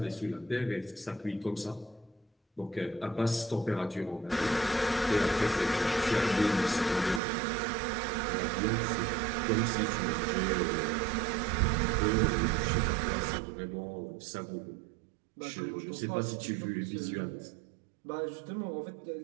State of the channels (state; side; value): drops out; left; at 7.2 s